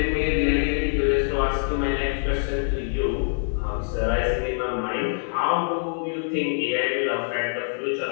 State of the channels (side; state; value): right; silent; digital silence